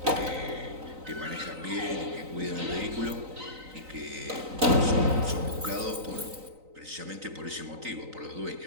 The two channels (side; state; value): left; late; 3.9 ms